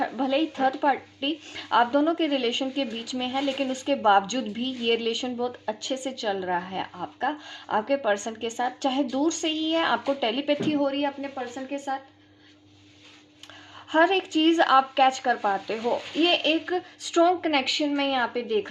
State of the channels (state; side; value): identical; both; correlation 1.00